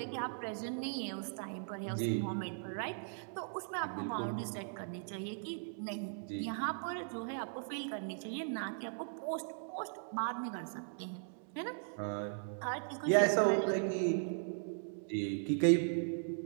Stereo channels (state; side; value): silent; left; digital silence